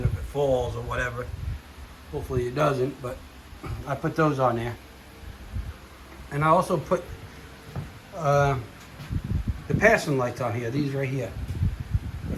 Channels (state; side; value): identical; both; correlation 1.00